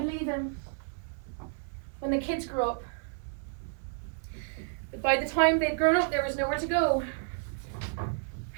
leave him when the kids grew up. But by the time they'd grown up, there was nowhere to go.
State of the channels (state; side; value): silent; left; 57 dB below the other